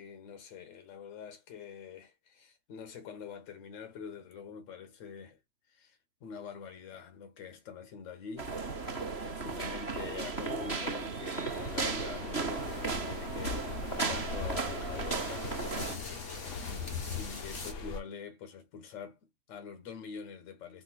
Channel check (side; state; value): right; late; 3.0 ms